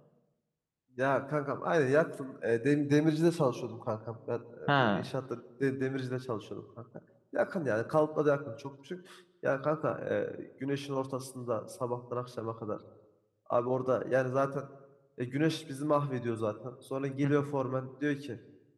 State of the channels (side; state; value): both; identical; correlation 1.00